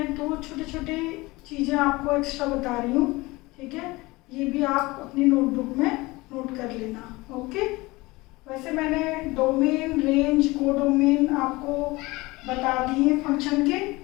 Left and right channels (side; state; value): right; quieter; 21.9 dB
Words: दो छोटे छोटे चीज़ें आपको एक्स्ट्रा बता रही हूँ। ठीक है, ये भी आप अपनी नोटबुक में नोट कर लेना। ओके, वैसे मैंने डोमेन, रेंज, कोडोमेन आपको बता दिए फंक्शन के।